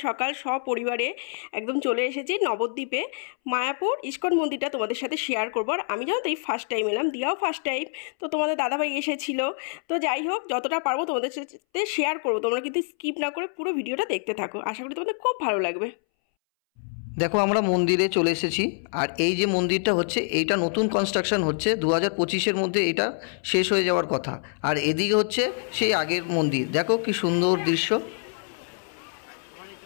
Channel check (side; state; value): right; silent; 61 dB below the other